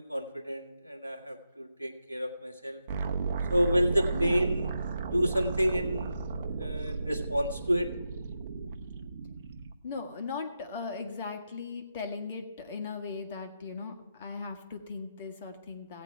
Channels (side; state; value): both; inverted; correlation -0.86